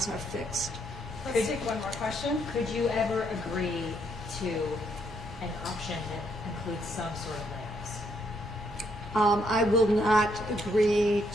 are fixed. Let's take one more question. Could you ever agree to an option that includes some sort of layoffs? I will not agree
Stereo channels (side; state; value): right; noise; rumble, 19 dB below the sound